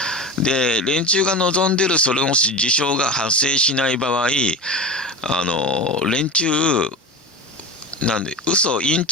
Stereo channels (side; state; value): both; normal; correlation 0.28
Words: で連中が望んでるそれの事象が発生しない場合、連中なんで嘘イン